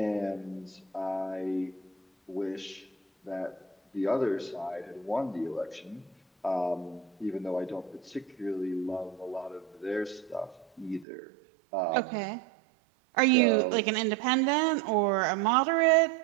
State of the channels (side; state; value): left; drops out; at 11.1 s